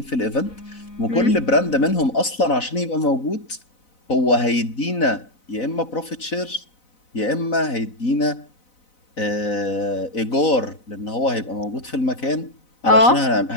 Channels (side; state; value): right; late; 4.0 ms